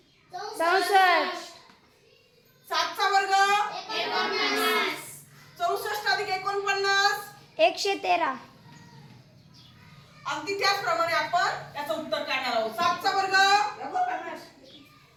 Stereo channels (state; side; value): identical; both; correlation 1.00